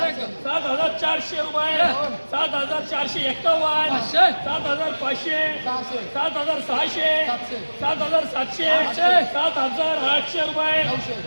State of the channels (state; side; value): inverted; both; correlation -1.00